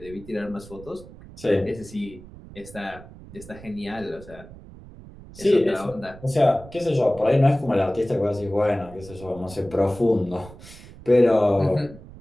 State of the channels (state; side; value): noise; right; rumble, 18 dB below the sound